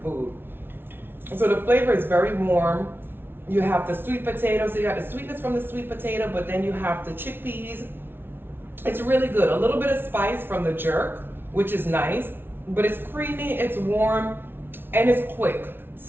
food. So the flavor is very warm. You have the sweet potato, so you got the sweetness from the sweet potato, but then you have the chickpeas. It's really good. A little bit of spice from the jerk, which is nice, but it's creamy, it's warm, and it's quick.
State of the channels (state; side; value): late; left; 0.11 ms